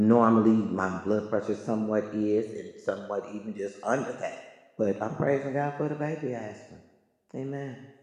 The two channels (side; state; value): both; identical; correlation 1.00